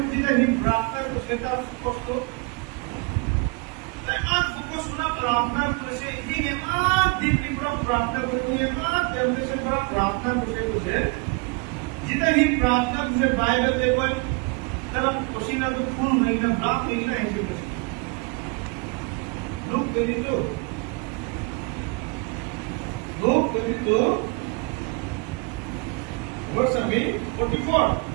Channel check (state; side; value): quieter; left; 31.2 dB